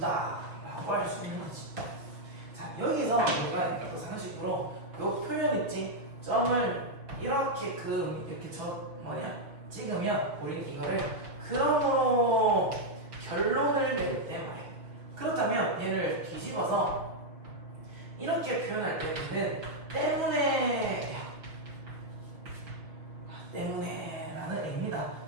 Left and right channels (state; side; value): late; left; 6.0 ms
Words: 라고 할 수 있는 거지. 자, 여기서 우리가 또 상식으로 요 표현 있지? 점을 이렇게 이렇게 찍으면 우리는 이거를 그러므로 결론을 낼 때 말해. 그렇다면 얘를 뒤집어서 이렇게 표현할 때는 때문에라는 의미다.